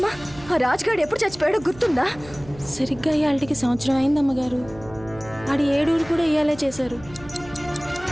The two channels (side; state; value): right; noise; hum, 19 dB below the sound